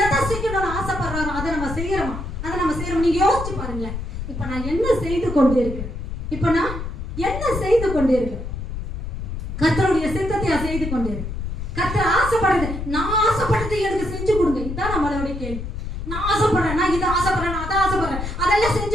எதை செய்யணும்னு ஆசைப்படுறாரோ அதை நம்ம செய்யறோமா? அதை நம்ம செய்யறோம். நீங்க யோசிச்சு பாருங்களேன். இப்ப நான் என்ன செய்து கொண்டு இருக்கேன்? இப்ப நான் என்ன செய்து கொண்டு இருக்கேன்? கர்த்தருடைய சித்தத்தை செய்து கொண்டு இருக்கேன். கர்த்தர் ஆசைப்படுறது, நான் ஆசைப்படுறது எனக்கு செஞ்சு கொடுங்க. இதுதான் நம்மளுடைய கேள்வி. நான் ஆசைப்படுறேன், நான் இதை ஆசைப்படுறேன், அதை ஆசைப்படுறேன், அதெல்லாம்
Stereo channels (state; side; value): noise; left; rumble, 6 dB below the sound